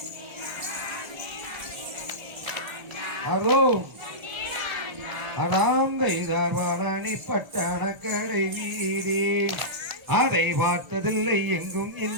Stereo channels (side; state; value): left; late; 1.0 ms